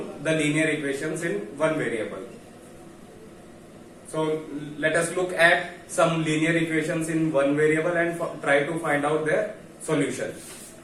the linear equations in one variable. So let us look at some linear equations in one variable and try to find out their solution.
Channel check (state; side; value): identical; both; correlation 1.00